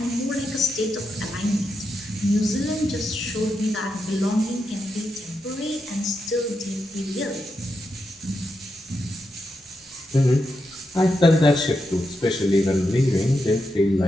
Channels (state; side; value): normal; both; correlation 0.85